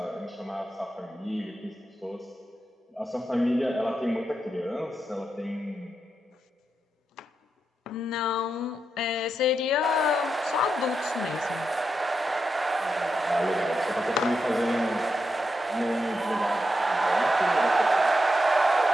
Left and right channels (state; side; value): normal; both; correlation 0.85